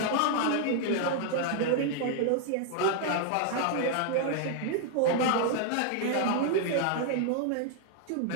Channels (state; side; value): different; both; correlation 0.00